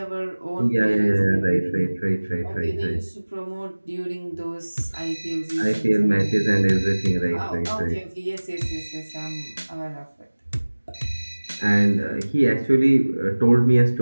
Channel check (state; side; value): inverted; both; correlation -1.00